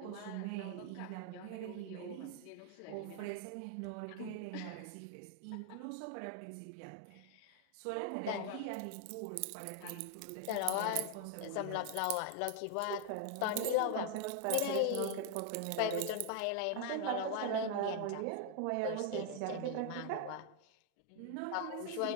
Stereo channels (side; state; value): both; different; correlation 0.00